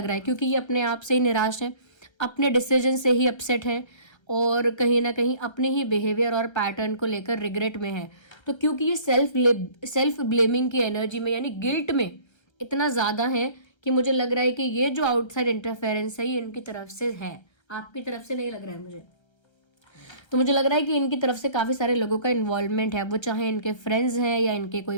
रहा है क्योंकि ये अपने आप से ही निराश हैं, अपने डिसीजन से ही अपसेट हैं, और कहीं ना कहीं अपने ही बिहेवियर और पैटर्न को लेकर रिग्रेट में है। तो क्योंकि ये सेल्फ ब्लेमिंग की एनर्जी में, यानी गिल्ट में इतना ज़्यादा है कि मुझे लग रहा है कि ये जो आउटसाइड इंटरफेरेंस है ये इनकी तरफ से है, आपकी तरफ से नहीं लग रहा है मुझे। तो मुझे लग रहा है कि इनकी तरफ से काफ़ी सारे लोगों का इन्वॉल्वमेंट है, वो चाहे इनके फ्रेंड्स हैं या इनके कोई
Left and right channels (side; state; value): right; late; 1.3 ms